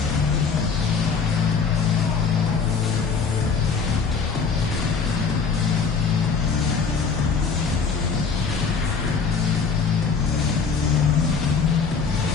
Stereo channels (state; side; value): quieter; right; 5.4 dB